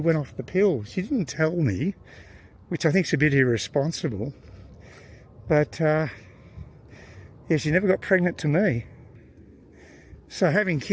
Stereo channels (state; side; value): identical; both; correlation 1.00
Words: off the pill. She didn't tell me, which I think is a bit irresponsible, but yeah, she never got pregnant to me. So having